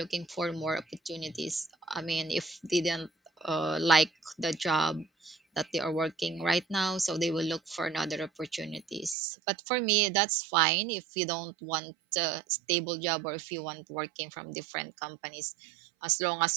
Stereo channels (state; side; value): drops out; left; at 9.2 s